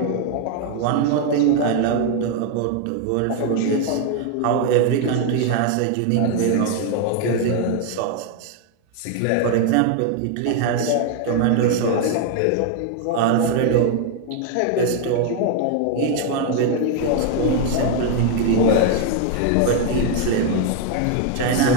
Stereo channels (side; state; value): both; different; correlation 0.01